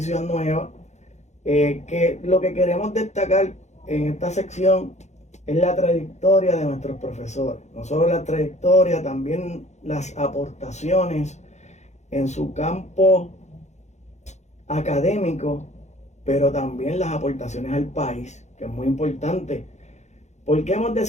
nueva, que lo que queremos destacar en esta sección es la trayectoria de nuestros profesores. No solo la trayectoria, también las aportaciones en su campo académico, pero también las aportaciones al país, que es muy importante. ¿Por qué hemos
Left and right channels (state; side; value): late; right; 0.33 ms